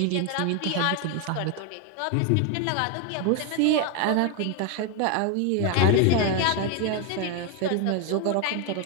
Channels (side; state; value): both; different; correlation 0.01